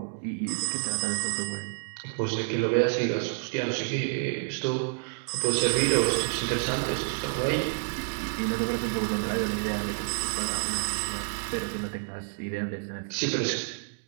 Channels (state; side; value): silent; left; digital silence